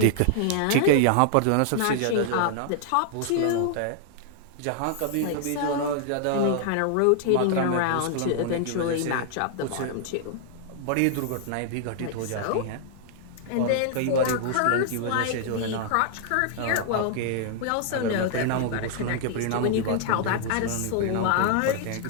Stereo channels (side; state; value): both; different; correlation 0.00